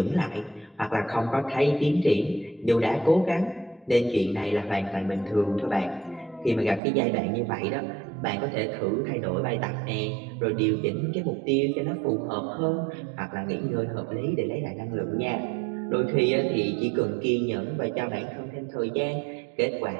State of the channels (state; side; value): drops out; left; at 6.8 s